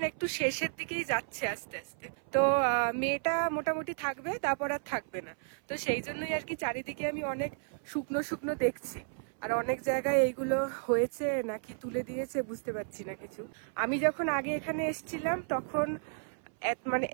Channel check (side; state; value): left; silent; 56 dB below the other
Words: একটু শেষের দিকেই যাচ্ছে আস্তে আস্তে। তো মেটা মোটামুটি থাকবে, তারপর আর থাকবে না। তো সেই জন্যই আর কি চারিদিকে আমি অনেক শুকনো শুকনো দেখছি, আর অনেক জায়গায় এইগুলো হয়েছে নাকি তুলে দিয়েছে বুঝতে পারছি না কিছু। আমি যখন আগে এখানে এসেছিলাম তখন মানে